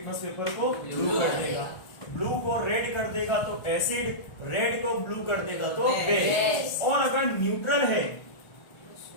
पेपर को ब्लू कर देगा। ब्लू को रेड कर देगा तो एसिड, रेड को ब्लू कर देगा तो बेस। और अगर न्यूट्रल है,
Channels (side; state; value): right; late; 1.4 ms